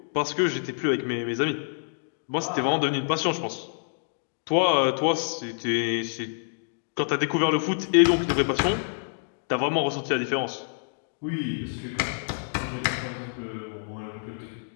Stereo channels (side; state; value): right; silent; digital silence